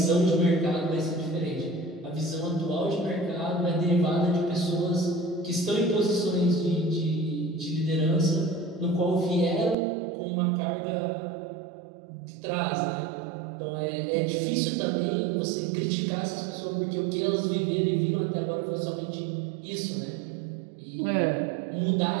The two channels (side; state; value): left; drops out; at 9.8 s